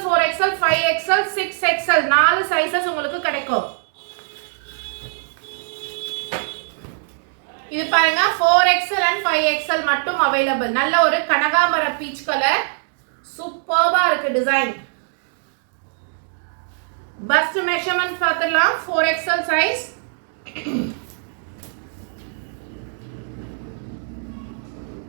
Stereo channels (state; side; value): silent; left; digital silence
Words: 4XL 5XL 6XL 4 sizes உங்களுக்கு கிடைக்கும். இது பாருங்க 4XL and 5XL மட்டும் அவைலபிள். நல்ல ஒரு கனகாம்பர பீச் கலர், சூப்பர்வா இருக்கு டிசைன். பஸ்ட் மெஷர்மென்ட் பார்த்துடலாம். 4XL சைஸ்,